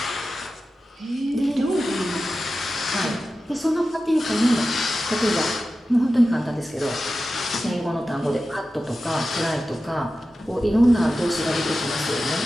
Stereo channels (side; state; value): both; normal; correlation 0.93